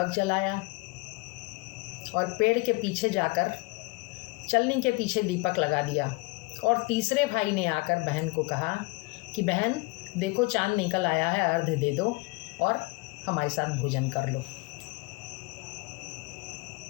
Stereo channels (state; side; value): quieter; right; 26.4 dB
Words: जलाया और पेड़ के पीछे जाकर चलनी के पीछे दीपक लगा दिया। और तीसरे भाई ने आकर बहन को कहा कि बहन देखो चांद निकल आया है, अर्घ्य दे दो और हमारे साथ भोजन कर लो।